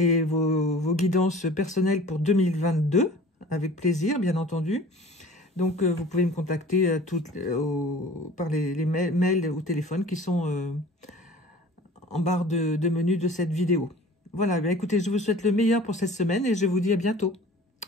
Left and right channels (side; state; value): both; normal; correlation 0.44